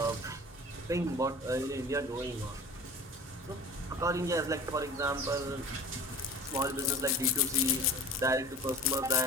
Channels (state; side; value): normal; both; correlation 0.40